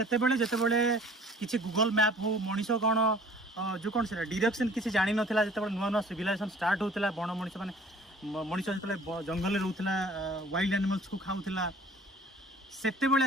बेले जते बेले किछि गूगल मैप हो मणिसो कोन जो कोन से डायरेक्शन किछि जानि नथिला जते बेले नुवा नुवा सिविलाइजेशन स्टार्ट होतला बण मणि से माने मणिसो जते बेले जंगल रे रहउतला वाइल्ड एनिमल्स को खाउतला सेते बेले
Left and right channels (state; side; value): normal; both; correlation 0.51